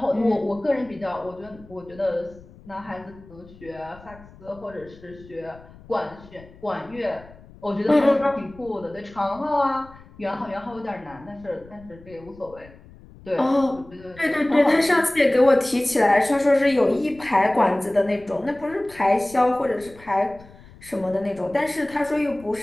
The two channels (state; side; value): noise; left; rumble, 22 dB below the sound